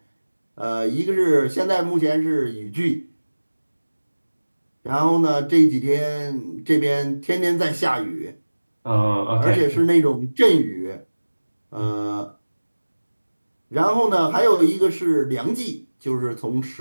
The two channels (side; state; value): both; inverted; correlation -1.00